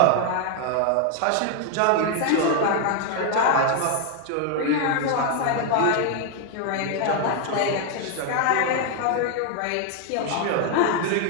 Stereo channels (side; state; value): both; different; correlation 0.00